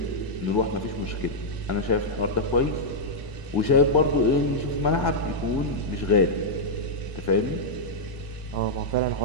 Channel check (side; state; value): right; late; 1.8 ms